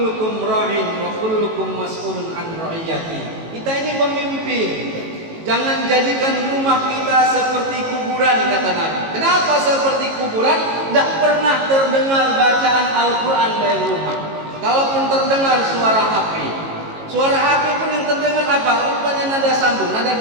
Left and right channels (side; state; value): left; late; 18 ms